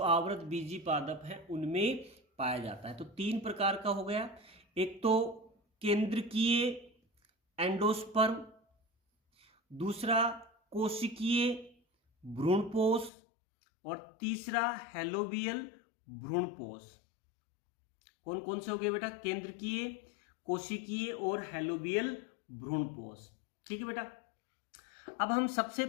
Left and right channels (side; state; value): right; drops out; at 13.1 s